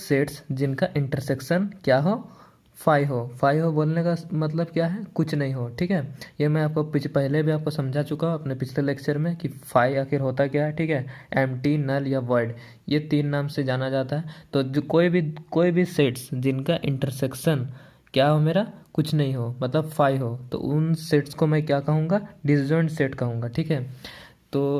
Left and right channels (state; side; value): identical; both; correlation 1.00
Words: जिनका इंटरसेक्शन क्या हो, फाइव हो बोलने का मतलब क्या है, कुछ नहीं हो। ठीक है, ये मैं आपको पहले भी आपको समझा चुका हूँ अपने पिछले लेक्चर में कि फाइव आखिर होता क्या है। ठीक है, एम्प्टी, नल या वॉइड, ये 3 नाम से जाना जाता है। तो जो कोई भी सेट्स जिनका इंटरसेक्शन क्या हो, मेरा कुछ नहीं हो, मतलब फाइव हो, तो उन सेट्स को मैं क्या कहूँगा, डिसजॉइंट सेट कहूँगा। ठीक है,